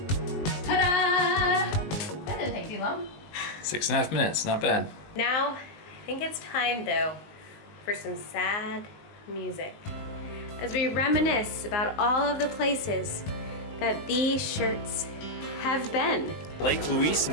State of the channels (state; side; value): late; right; 19 ms